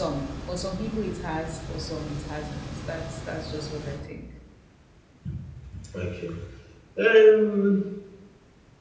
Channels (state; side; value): identical; both; correlation 1.00